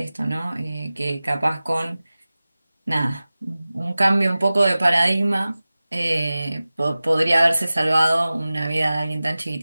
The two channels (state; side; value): inverted; both; correlation -0.97